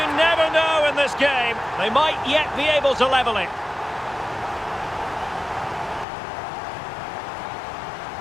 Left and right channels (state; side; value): drops out; right; at 6.1 s